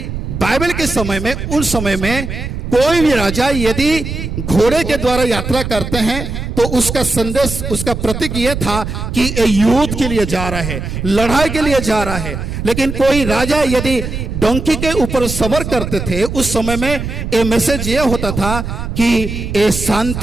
बाइबल के समय में, उस समय में कोई भी राजा यदि घोड़े के द्वारा यात्रा करते हैं तो उसका संदेश, उसका प्रतीक यह था कि ये युद्ध के लिए जा रहा है, लड़ाई के लिए जा रहा है। लेकिन कोई राजा यदि डोंकी के ऊपर सवार करते थे उस समय में ये मैसेज ये होता था कि ये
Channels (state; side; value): noise; right; rumble, 5 dB below the sound